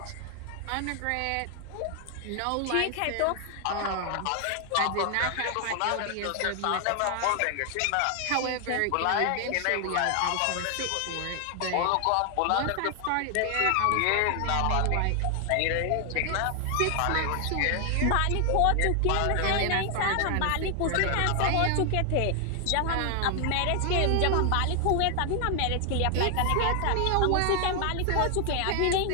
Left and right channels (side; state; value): both; different; correlation 0.00